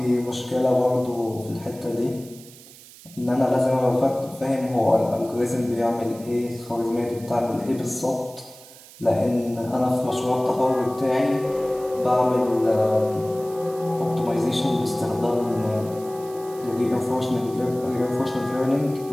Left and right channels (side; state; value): right; noise; hiss, 20 dB below the sound